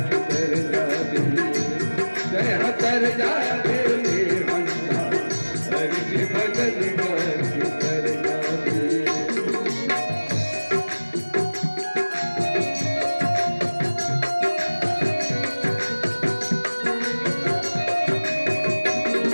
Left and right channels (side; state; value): both; inverted; correlation -1.00